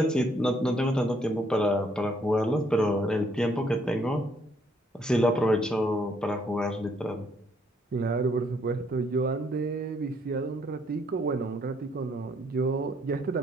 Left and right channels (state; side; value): normal; both; correlation 0.68